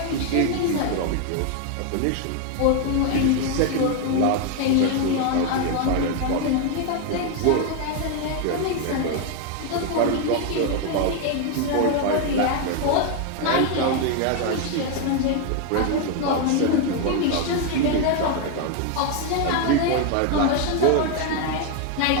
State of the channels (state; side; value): different; both; correlation 0.01